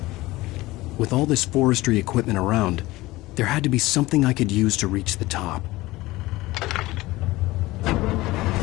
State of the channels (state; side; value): quieter; right; 19.2 dB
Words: With all this forestry equipment around, there had to be something I could use to reach the top.